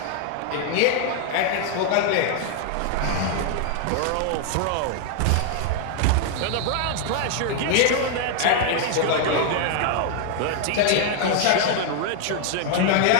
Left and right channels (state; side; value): different; both; correlation 0.00